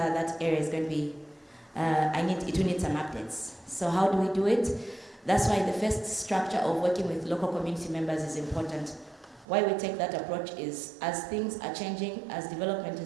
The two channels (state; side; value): drops out; left; at 9.5 s